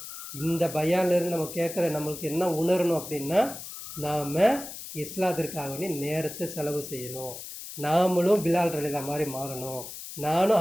இந்த பயான்லேருந்து நம்ம கேட்குற நம்மளுக்கு என்ன உணரணும் அப்படின்னா, நாம் இஸ்லாத்திற்காக நேரத்தை செலவு செய்யணும். நாமளும் பிலால் ரலிதா மாதிரி மாறணும், நானும்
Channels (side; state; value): left; noise; hiss, 11 dB below the sound